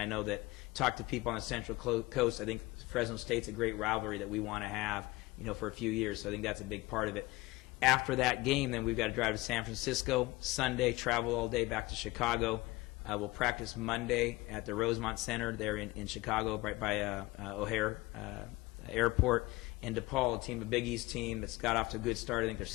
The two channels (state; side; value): quieter; right; 20.8 dB